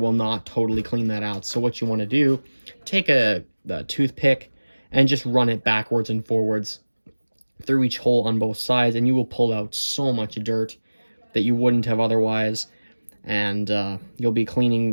not totally clean that out. So what you want to do, take a toothpick and just run it backwards and forwards through each hole on both sides, and you will pull out so much dirt that you wouldn't have otherwise. And you'll be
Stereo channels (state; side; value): inverted; both; correlation -1.00